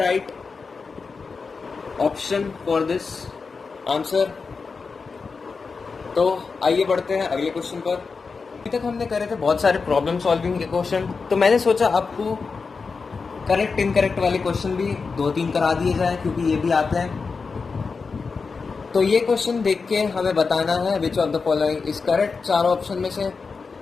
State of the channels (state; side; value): quieter; right; 4.8 dB